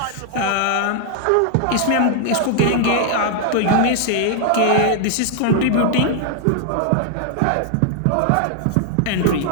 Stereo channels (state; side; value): different; both; correlation 0.00